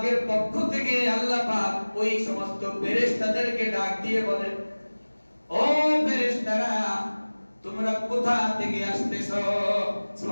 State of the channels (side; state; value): both; inverted; correlation -1.00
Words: পক্ষ থেকে আল্লাহ পাক ওই সমস্ত ফেরেশতাদেরকে ডাক দিয়ে বলেন, ও ফেরেশতারা, তোমরা কোথা থেকে আসতেছো?